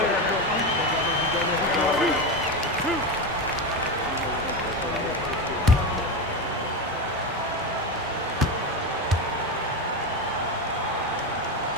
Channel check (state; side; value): normal; both; correlation 0.17